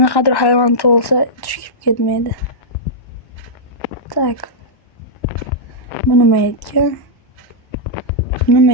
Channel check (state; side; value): late; right; 1.1 ms